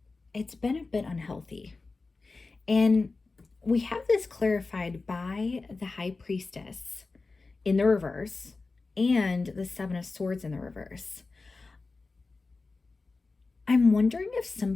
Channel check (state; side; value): quieter; right; 3.8 dB